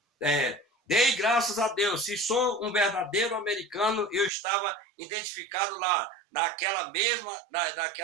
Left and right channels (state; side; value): drops out; left; at 4.3 s